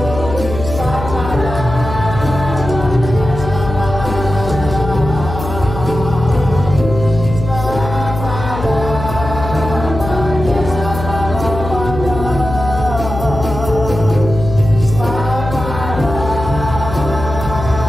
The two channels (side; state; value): left; noise; hum, 7 dB below the sound